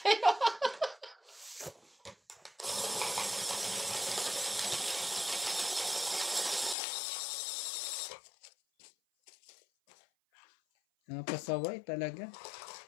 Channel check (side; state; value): right; drops out; at 6.8 s